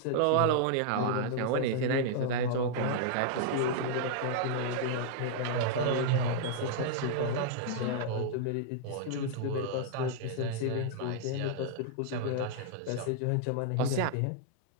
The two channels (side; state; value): both; different; correlation -0.01